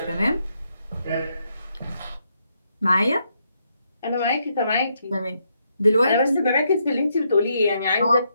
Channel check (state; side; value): inverted; both; correlation -0.77